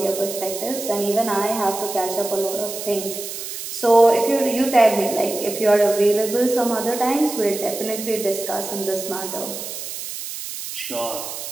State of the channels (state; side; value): noise; right; hiss, 8 dB below the sound